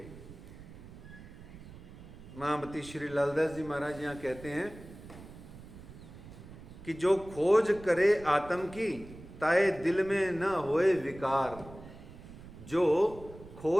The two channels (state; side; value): noise; right; rumble, 16 dB below the sound